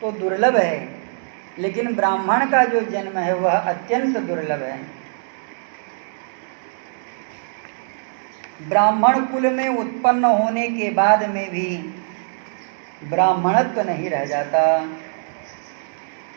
तो दुर्लभ है, लेकिन ब्राह्मण का जो जन्म है वह अत्यंत दुर्लभ है। ब्राह्मण कुल में उत्पन्न होने के बाद में भी ब्राह्मणत्व नहीं रह जाता।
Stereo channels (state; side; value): silent; left; digital silence